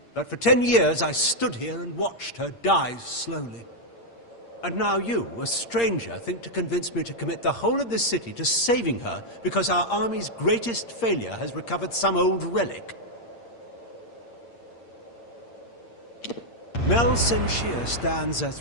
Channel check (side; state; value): right; late; 8.6 ms